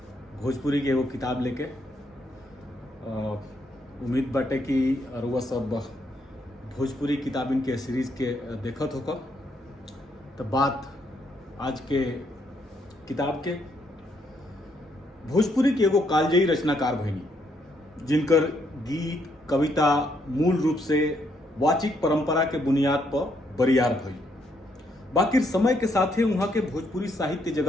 भोजपुरी के एगो किताब लेके। उम्मीद बाटे कि अरुआ सब भोजपुरी किताबिन के सीरीज के देखत होकर। तो बात आज के किताब के भोजपुरी के एगो कालजयी रचनाकार भइनी, जिनकर गीत कविता मूल रूप से वाचिक परंपरा के बुनियाद पर बरियार भई। बाकी समय के साथ ही वहां के भोजपुरी साहित्य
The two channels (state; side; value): normal; both; correlation 0.74